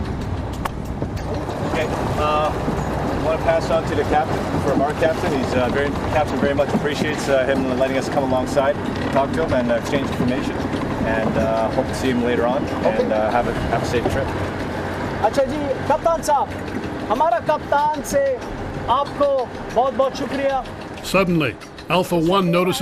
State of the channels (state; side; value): identical; both; correlation 1.00